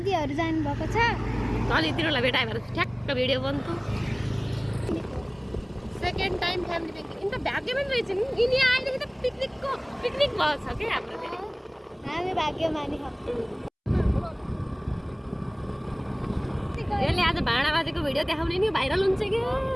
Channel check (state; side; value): identical; both; correlation 1.00